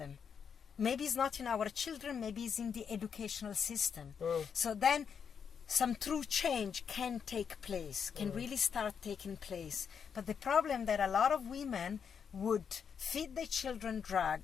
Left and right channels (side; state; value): right; quieter; 7.0 dB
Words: Maybe it's not in our children, maybe it's in the educational system. So then some true change can take place, can really start taking place. But the problem that a lot of women would feed their children